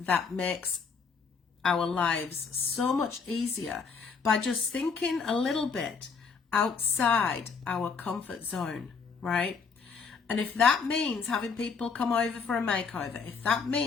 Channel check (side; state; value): right; quieter; 5.4 dB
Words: makes our lives so much easier by just thinking a little bit outside our comfort zone, right? And if that means having people come over for a makeover, if that